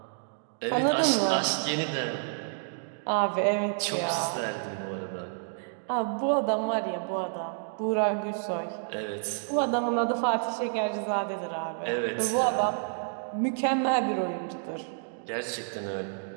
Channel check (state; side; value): silent; left; digital silence